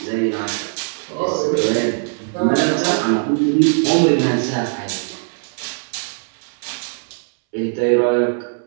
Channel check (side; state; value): left; silent; 61 dB below the other